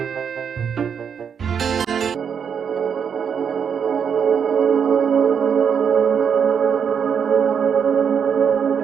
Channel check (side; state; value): left; quieter; 7.2 dB